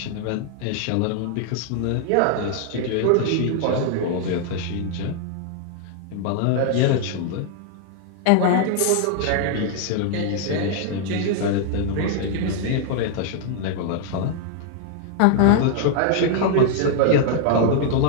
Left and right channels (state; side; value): different; both; correlation 0.00